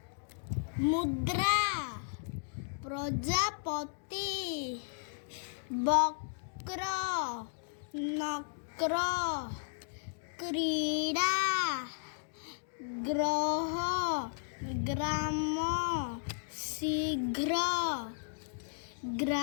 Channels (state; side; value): silent; right; digital silence